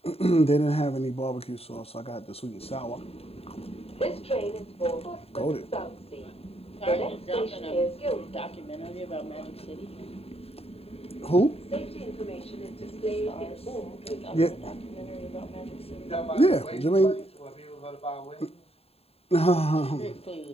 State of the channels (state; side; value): late; right; 0.29 ms